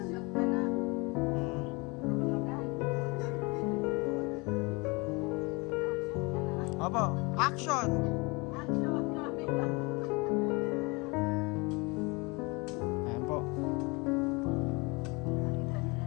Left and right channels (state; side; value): quieter; right; 27.3 dB